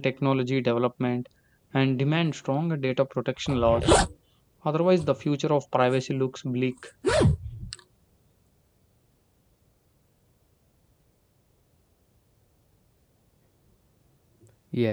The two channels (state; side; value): identical; both; correlation 1.00